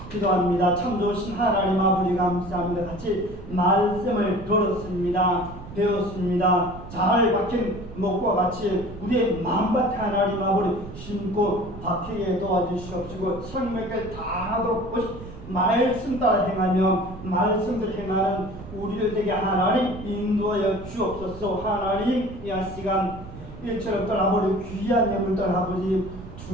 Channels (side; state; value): right; noise; rumble, 14 dB below the sound